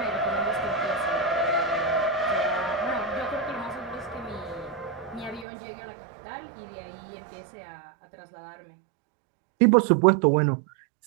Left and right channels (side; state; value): left; drops out; at 5.5 s